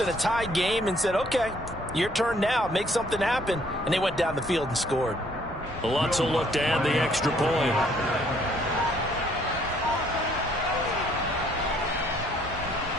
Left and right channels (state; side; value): normal; both; correlation 0.64